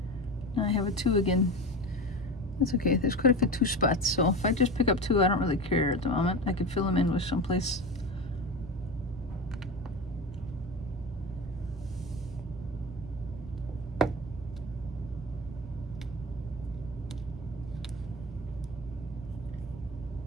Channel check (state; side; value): normal; both; correlation 0.27